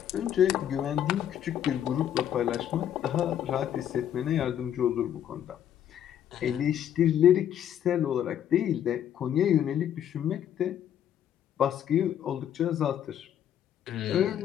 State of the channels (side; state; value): right; quieter; 10.2 dB